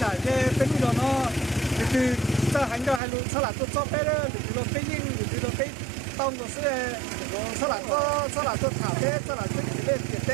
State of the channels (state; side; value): drops out; left; at 3.0 s